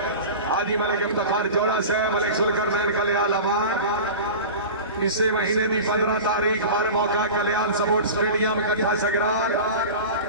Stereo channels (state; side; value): inverted; both; correlation -0.32